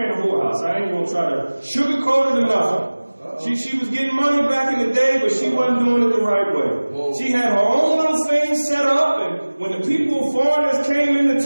a whorehouse. I ain't going to try to sugarcoat it enough. She was getting money back in the day, but she wasn't doing it the right way. Whoa. She had her own little thing set up, and when the people, foreigners came into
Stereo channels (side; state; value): both; inverted; correlation -1.00